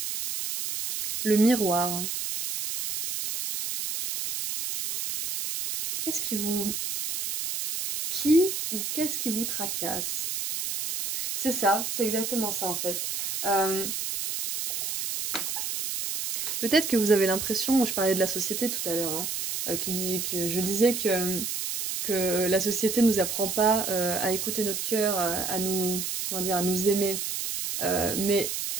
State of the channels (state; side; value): noise; right; hiss, 3 dB below the sound